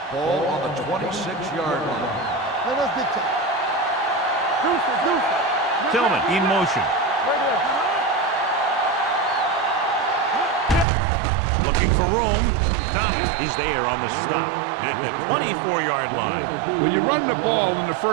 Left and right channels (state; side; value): drops out; left; at 10.9 s